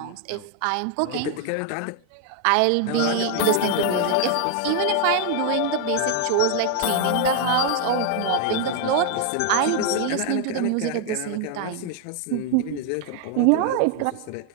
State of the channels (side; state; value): both; different; correlation 0.00